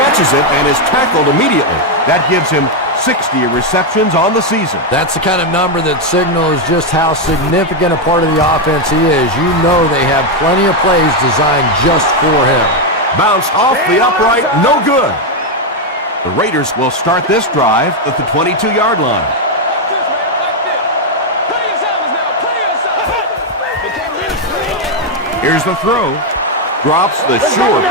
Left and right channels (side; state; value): both; normal; correlation 0.04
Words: it and is tackled immediately. That gives him 60 receptions on the season. That's the kind of number that signals just how significant a part of the offense he is. You know they have plenty of plays designed just for him. Bounce off the upright, no good. The Raiders will start this drive at the 22-yard line. Here's the throw. Drops the sure